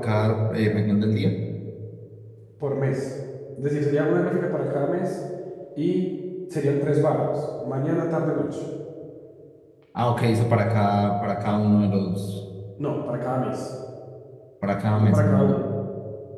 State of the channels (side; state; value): both; identical; correlation 1.00